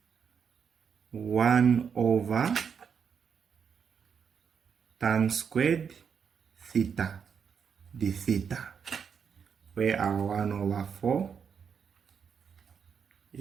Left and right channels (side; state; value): left; quieter; 6.8 dB